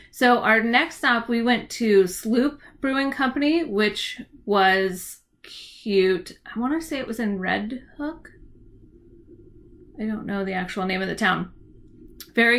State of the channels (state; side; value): identical; both; correlation 1.00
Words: so our next stop, we went to Sloop Brewing Company, which was cute. I want to say it was in Red Hook. I don't know the actual name of the town.